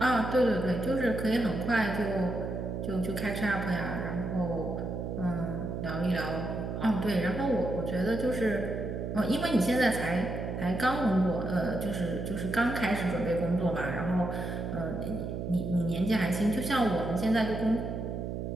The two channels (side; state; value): right; noise; hum, 4 dB below the sound